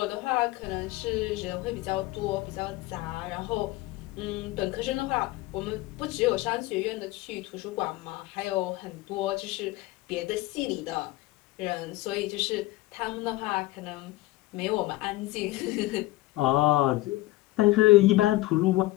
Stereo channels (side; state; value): right; quieter; 18.7 dB